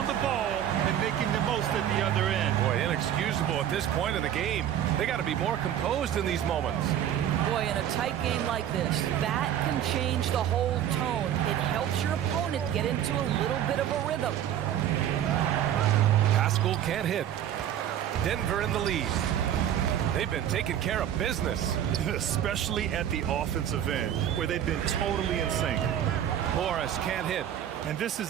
the ball and making the most at the other end. Boy, inexcusable at this point in the game. They got to be more composed in these moments. Boy, in a tight game like this, that can change the whole tone. It helps your opponent get into a little bit of a rhythm. Pascal can't hit. Denver in the lead. They've been taking care of business. Especially at the offensive end, where they've been totally in sync. Morris can't hit. And this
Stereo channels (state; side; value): quieter; left; 10.5 dB